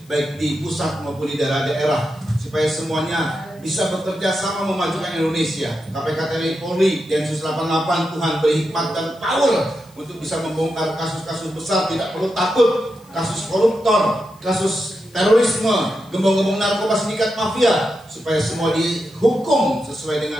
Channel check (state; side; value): noise; left; hiss, 28 dB below the sound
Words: baik di pusat maupun di daerah-daerah, supaya semuanya bisa bekerja sama memajukan Indonesia. KPK TNI Polri, Densus 88, Tuhan beri hikmat dan power untuk bisa membongkar kasus-kasus besar, tidak perlu takut, kasus koruptor, kasus terorisme, gembong-gembong narkoba, sindikat mafia, supaya semua dihukum sesuai